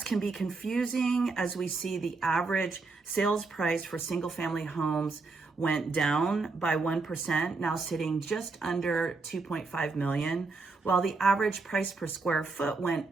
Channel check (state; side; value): quieter; left; 3.9 dB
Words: can be confusing as we see the average sales price for single family homes went down by 1%, now sitting just under 2.5 million, while the average price per square foot went